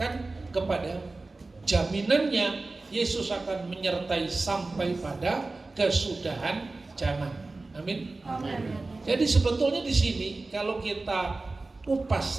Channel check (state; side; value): quieter; left; 3.4 dB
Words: kepada. Jaminannya Yesus akan menyertai sampai pada kesudahan zaman. Amin. Amin. Jadi sebetulnya di sini kalau kita kupas